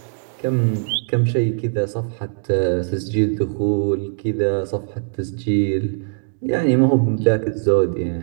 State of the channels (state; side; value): silent; left; digital silence